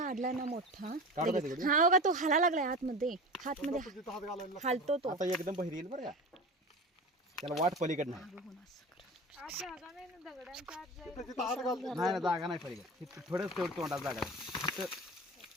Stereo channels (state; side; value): normal; both; correlation 0.32